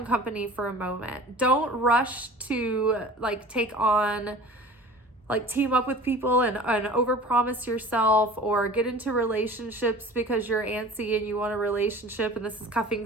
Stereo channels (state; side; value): normal; both; correlation 0.41